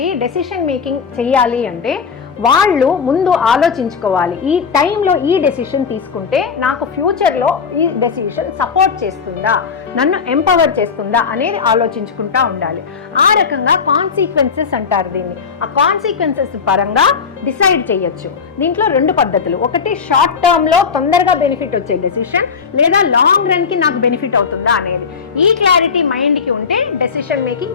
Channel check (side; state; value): right; quieter; 5.9 dB